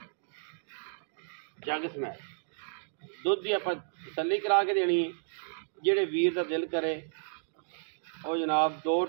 जग समैत दुध की आप तसल्ली करा के देनी है। जेड़े वीर का दिल करे वो जनाब 2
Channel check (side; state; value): left; silent; digital silence